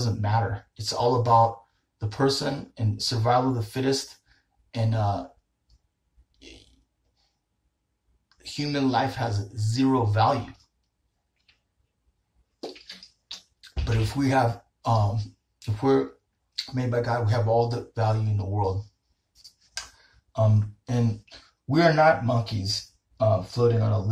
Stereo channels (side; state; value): both; identical; correlation 1.00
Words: matter. It's all about the person and survival of the fittest, and human life has zero value. But if we have, if we're made by God. We have all the value in the world. And we are not monkeys floating on a